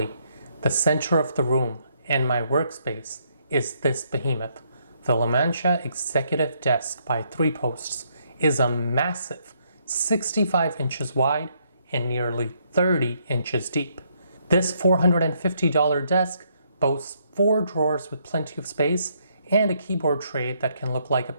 the center of the room and my workspace is this behemoth. The Lamantia Executive Desk by 3 Posts is a massive 65 inches wide and nearly 30 inches deep. This $450 desk boasts 4 drawers with plenty of space and a keyboard tray that can look like a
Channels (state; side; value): inverted; both; correlation -0.72